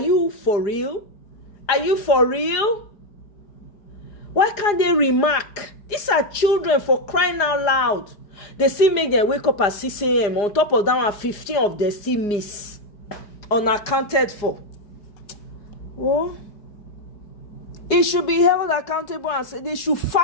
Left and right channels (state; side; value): late; right; 4.9 ms